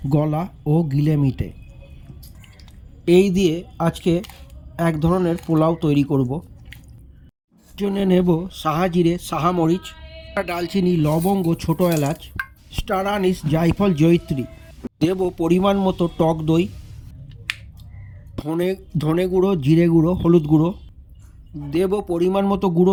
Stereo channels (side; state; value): both; identical; correlation 1.00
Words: গলা ও গিলে মিটে। এই দিয়ে আজকে এক ধরনের পোলাও তৈরি করব। জন্য নেব সাহা জিরে, সাহা মরিচ, ডালচিনি, লবঙ্গ, ছোটো এলাচ, স্টার আনিস, জায়ফল, জয়িত্রী। দেব পরিমাণ মতো টক দই, ধনে গুঁড়ো, জিরে গুঁড়ো, হলুদ গুঁড়ো। দেব পরিমাণ মতো গুঁড়ো